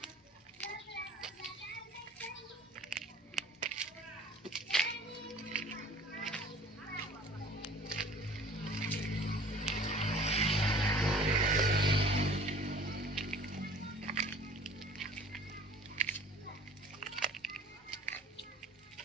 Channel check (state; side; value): normal; both; correlation 0.49